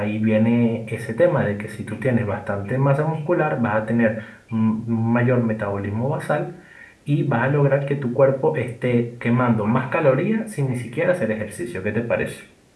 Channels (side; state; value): both; identical; correlation 1.00